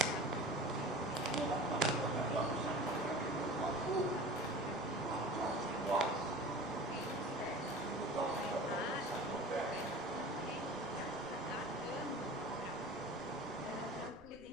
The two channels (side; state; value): right; noise; rumble, 23 dB below the sound